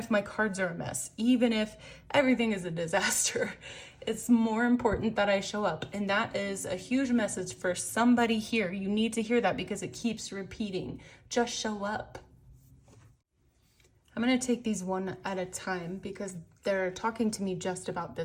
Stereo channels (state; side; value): identical; both; correlation 1.00